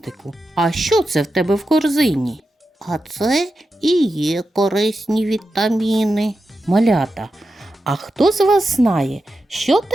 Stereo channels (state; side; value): normal; both; correlation 0.90